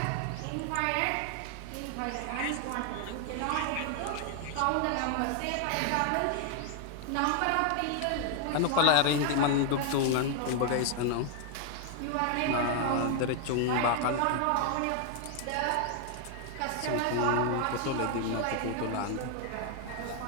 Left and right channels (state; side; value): different; both; correlation 0.00